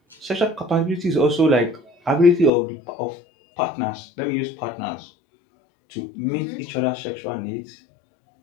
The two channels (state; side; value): drops out; right; at 2.5 s